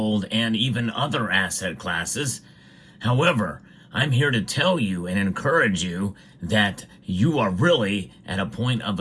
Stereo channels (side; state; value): both; identical; correlation 1.00